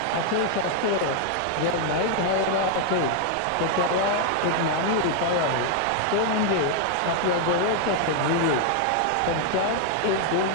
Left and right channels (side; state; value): both; different; correlation 0.00